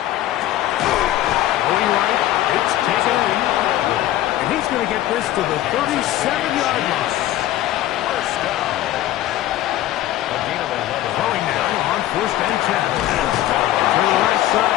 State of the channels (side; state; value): right; quieter; 14.1 dB